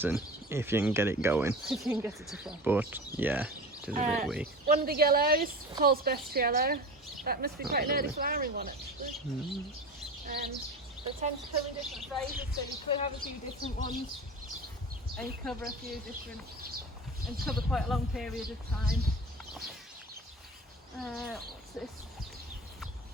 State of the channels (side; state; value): both; normal; correlation 0.32